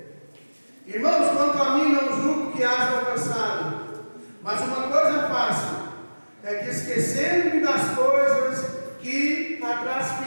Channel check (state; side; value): inverted; both; correlation -1.00